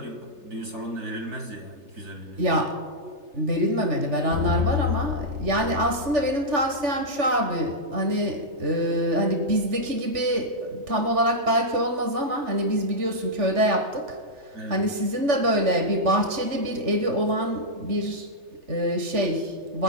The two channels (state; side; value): late; left; 3.3 ms